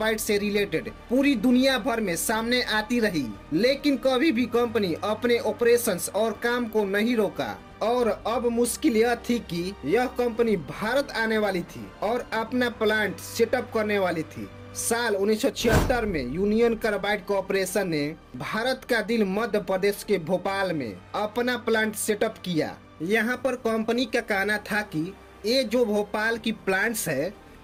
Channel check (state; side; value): identical; both; correlation 1.00